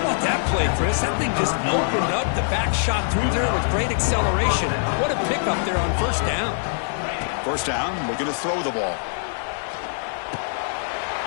that play, Chris? That thing just opened up. The back shot through there with great acceleration. What a pickup there on first down. First down, we're going to throw the ball.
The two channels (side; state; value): right; silent; digital silence